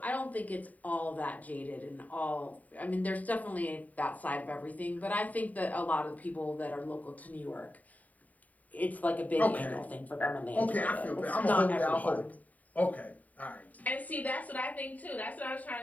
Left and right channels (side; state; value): right; late; 0.073 ms